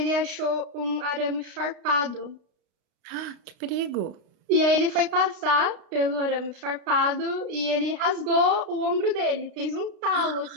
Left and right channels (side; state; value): left; late; 32 ms